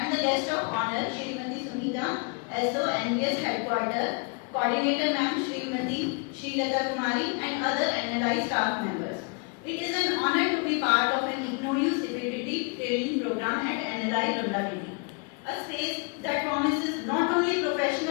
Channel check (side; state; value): right; quieter; 33.4 dB